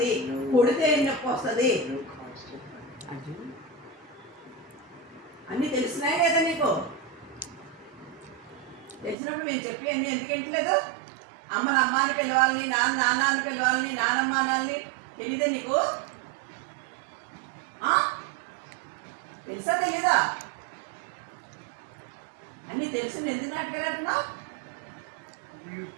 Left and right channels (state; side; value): drops out; left; at 9.2 s